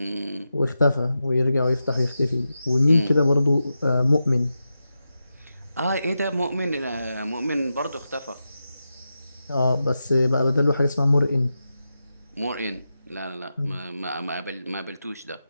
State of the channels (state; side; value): inverted; both; correlation -0.90